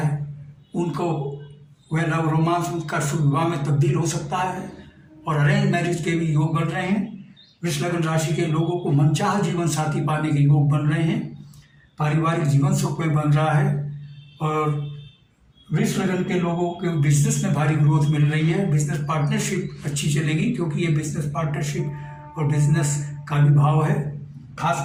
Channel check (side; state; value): both; identical; correlation 1.00